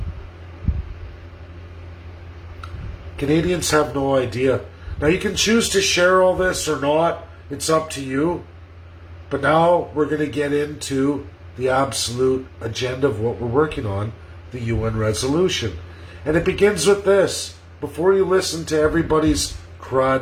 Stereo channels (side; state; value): both; identical; correlation 1.00